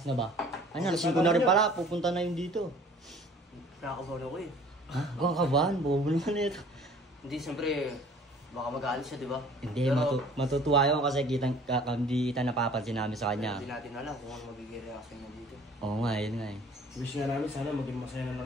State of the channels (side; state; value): both; normal; correlation 0.51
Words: na ba? Ano, alas 5 na rin pala. Pupunta na yun dito. Nakakabahan ako eh. Ha? Huwag kang kabahan. Bobo naman ito. Hindi, siyempre, baka mag-aalis siya, di ba? Hindi, matutuwa yun kasi hindi kita napapansin namin sa kanya. Hindi natin alam kung ano magiging reaction niya dito. Oo nga, yun nga eh. Wish nga namin sana maging masaya na